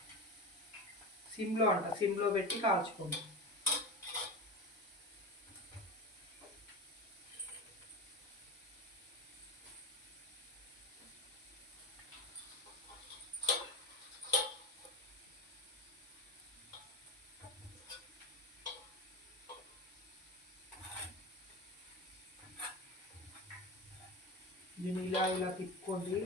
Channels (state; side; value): normal; both; correlation 0.24